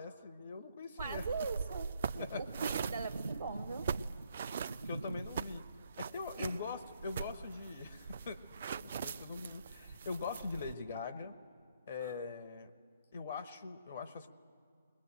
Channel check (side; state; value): both; inverted; correlation -0.72